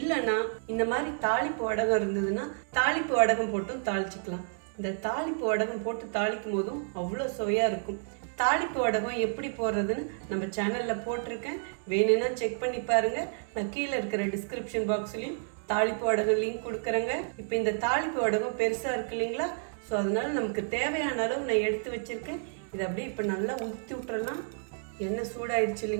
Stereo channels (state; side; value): silent; left; 58 dB below the other